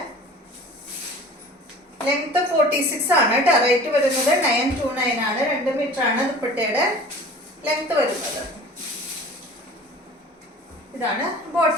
ലെങ്ത് 46 ആണ് കേട്ടോ. റേറ്റ് വരുന്നത് 929 ആണ്. 2 മീറ്റർ ആണ് ദുപ്പട്ടയുടെ ലെങ്ത് വരുന്നത്. ഇതാണ്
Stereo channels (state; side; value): normal; both; correlation 0.43